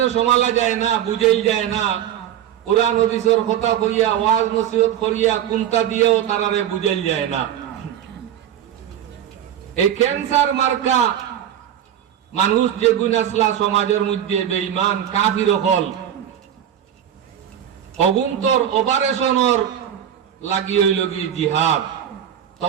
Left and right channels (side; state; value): left; quieter; 10.2 dB